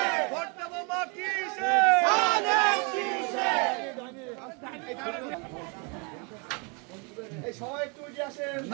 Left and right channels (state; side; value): quieter; left; 33.7 dB